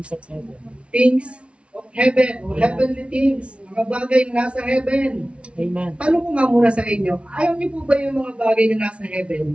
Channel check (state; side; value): late; left; 0.060 ms